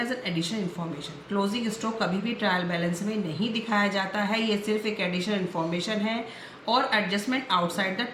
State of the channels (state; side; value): identical; both; correlation 1.00